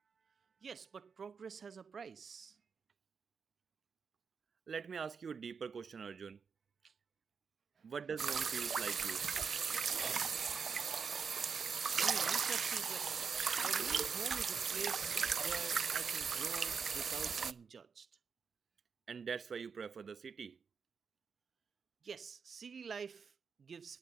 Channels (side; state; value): left; quieter; 5.9 dB